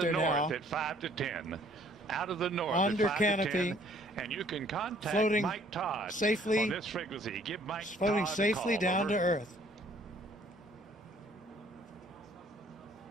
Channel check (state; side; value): normal; both; correlation 0.59